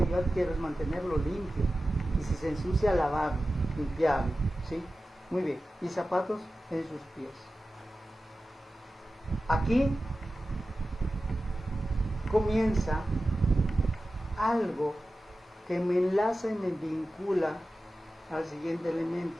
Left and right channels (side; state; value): both; normal; correlation 0.94